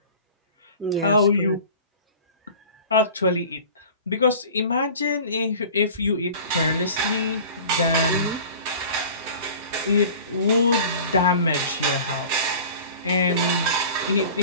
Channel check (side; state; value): both; inverted; correlation -0.41